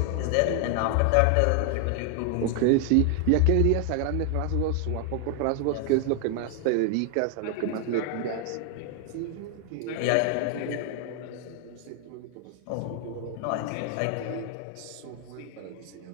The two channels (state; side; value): different; both; correlation 0.00